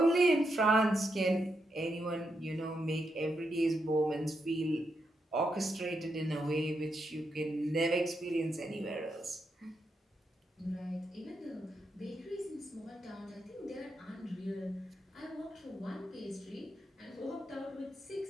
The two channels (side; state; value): both; normal; correlation 0.83